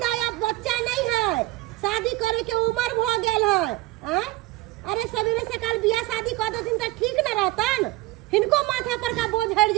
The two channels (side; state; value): left; quieter; 18.6 dB